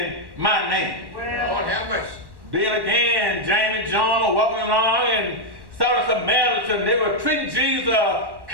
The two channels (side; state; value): left; late; 1.1 ms